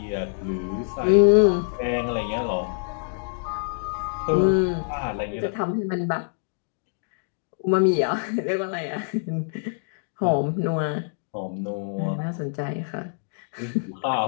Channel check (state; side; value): silent; right; digital silence